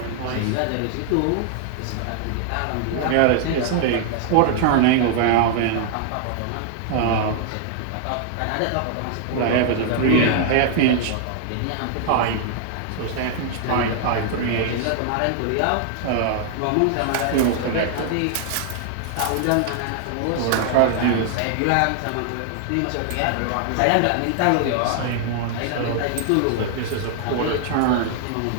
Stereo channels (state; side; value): different; both; correlation 0.00